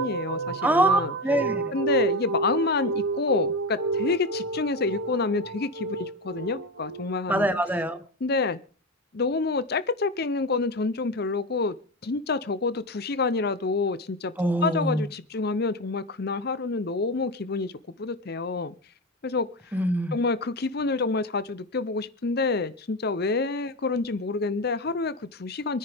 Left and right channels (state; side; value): normal; both; correlation 0.18